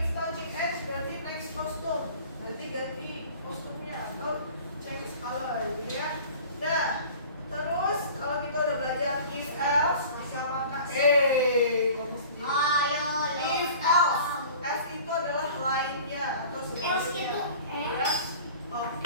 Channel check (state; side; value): inverted; both; correlation -0.44